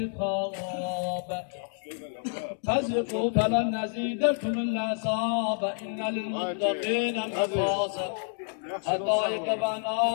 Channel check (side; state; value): right; silent; 58 dB below the other